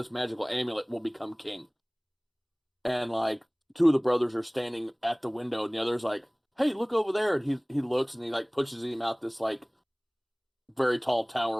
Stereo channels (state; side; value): identical; both; correlation 1.00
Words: magical amulet will become king. And like 2 of the brothers are standing at the window, and the other's like, "Hey, look over there!" And he looks and he like pushes him out this like very tall